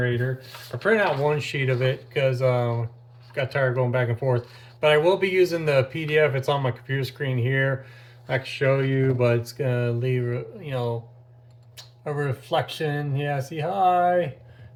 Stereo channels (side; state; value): both; identical; correlation 1.00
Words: I printed out one sheet of it because got tired of going back and forth. But I will be using the PDF. It's on my computer screen here. I can show you, but it's gonna leave, you know, a reflection. Yeah, see, hi.